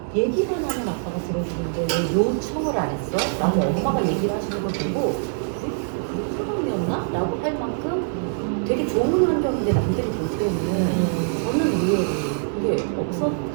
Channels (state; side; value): silent; left; 63 dB below the other